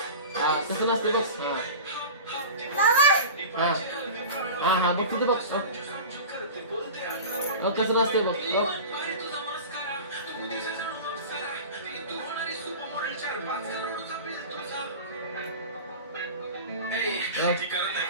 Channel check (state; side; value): inverted; both; correlation -0.33